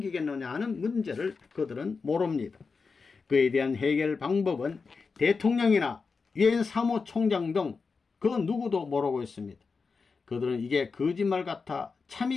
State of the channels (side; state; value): right; quieter; 4.8 dB